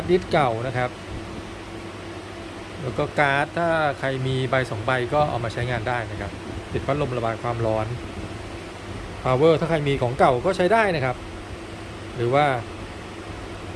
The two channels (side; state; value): both; identical; correlation 1.00